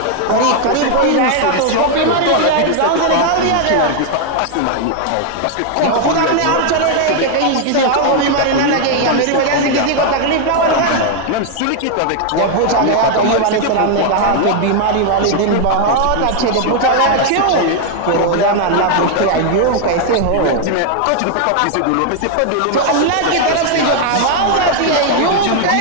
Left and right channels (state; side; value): different; both; correlation 0.00